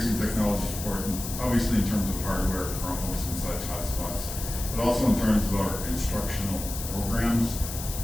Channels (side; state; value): left; noise; hiss, 8 dB below the sound